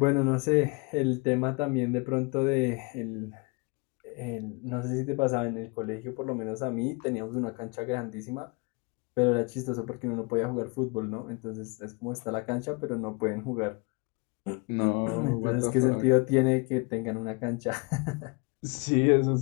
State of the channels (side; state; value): right; quieter; 30.2 dB